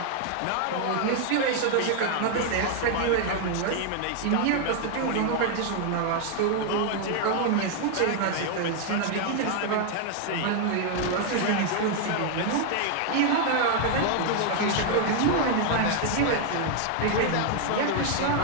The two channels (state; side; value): different; both; correlation 0.00